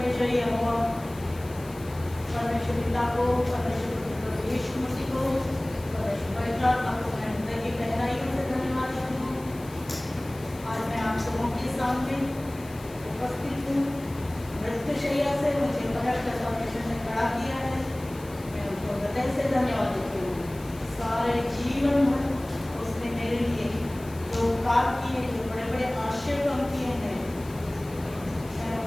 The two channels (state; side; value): noise; left; hiss, 21 dB below the sound